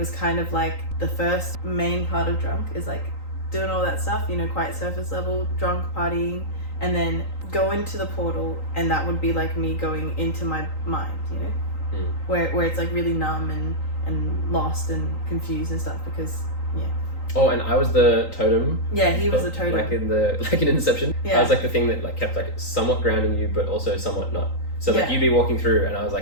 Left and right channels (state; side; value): late; right; 3.9 ms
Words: kind of like the first main part of Drunk is like doing all that stuff, quite surface level, drunk, partying, and then go into the portal, and that would be like me going into my mind, where it's like really numb and lost and confused and stuff, because Oh, and I was the totem. Yeah, he was the totem. Like in Inception. Yeah. I was like the thing that like kept like somewhat grounding you, but also somewhat not. So like you'd be walking through, and I was